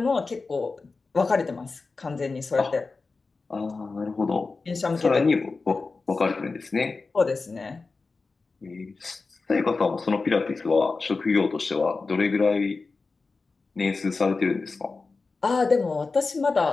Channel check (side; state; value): right; quieter; 4.0 dB